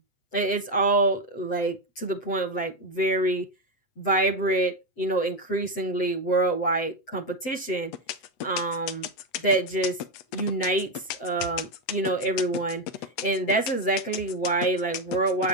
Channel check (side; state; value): right; late; 7.6 ms